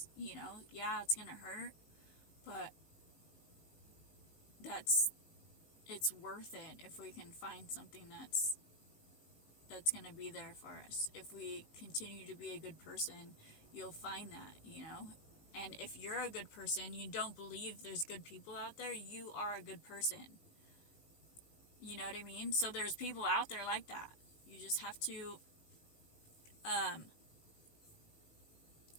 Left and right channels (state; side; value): late; right; 19 ms